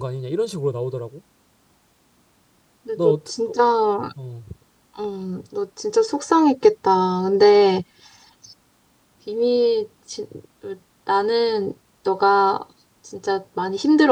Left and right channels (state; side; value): identical; both; correlation 1.00